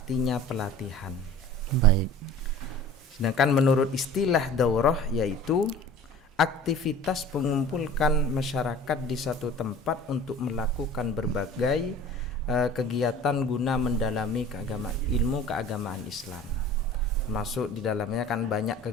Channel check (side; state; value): both; normal; correlation 0.42